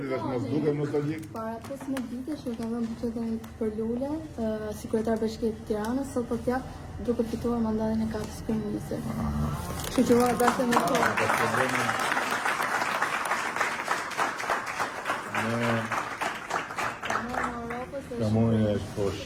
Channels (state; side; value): identical; both; correlation 1.00